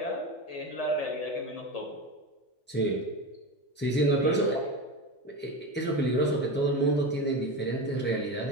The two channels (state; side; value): normal; both; correlation 0.22